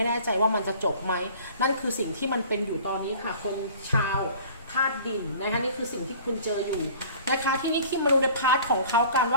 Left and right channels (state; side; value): inverted; both; correlation -0.47